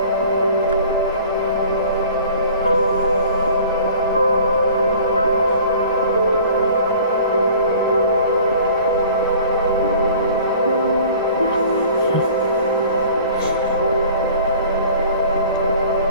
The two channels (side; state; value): both; inverted; correlation -0.47